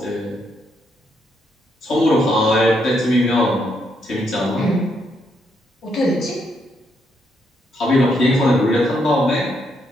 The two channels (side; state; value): both; normal; correlation 0.76